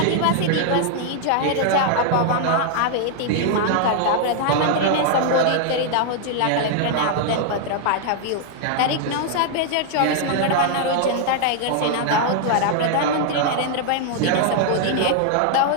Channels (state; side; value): different; both; correlation 0.00